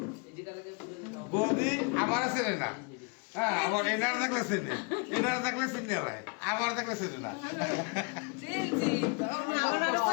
বৌদি আমার ছেলে না হ্যাঁ আমার এনার দেখলে চেনে এনার দেখলে চিনে ভাই আমার দেখলে চেনে না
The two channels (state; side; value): quieter; right; 32.4 dB